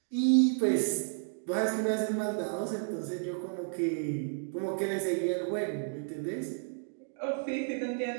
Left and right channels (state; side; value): silent; left; 56 dB below the other